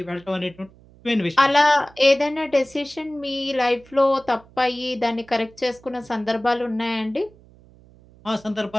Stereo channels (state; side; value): noise; right; hum, 26 dB below the sound